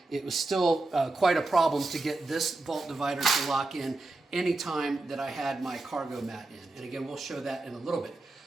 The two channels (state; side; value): quieter; left; 3.1 dB